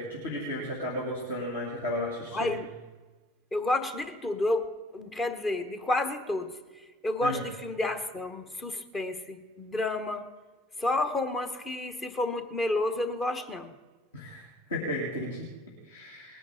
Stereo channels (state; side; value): normal; both; correlation 0.58